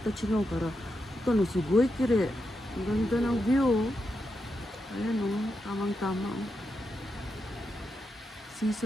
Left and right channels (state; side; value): normal; both; correlation 0.86